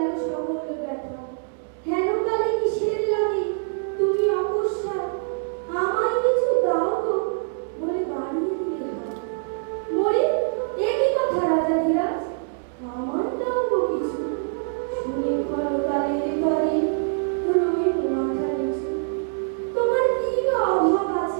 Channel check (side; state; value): left; silent; digital silence